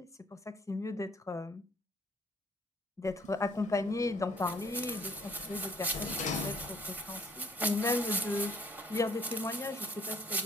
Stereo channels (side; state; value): both; normal; correlation 0.59